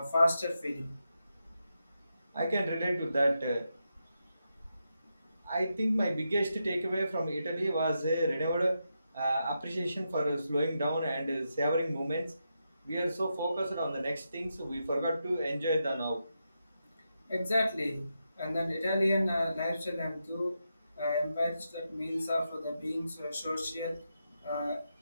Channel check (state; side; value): inverted; both; correlation -0.85